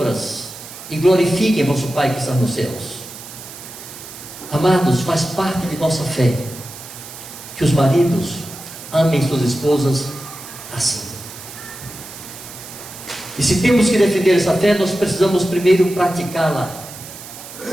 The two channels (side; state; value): right; noise; hiss, 14 dB below the sound